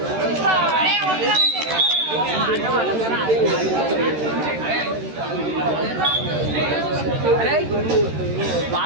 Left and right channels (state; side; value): late; left; 13 ms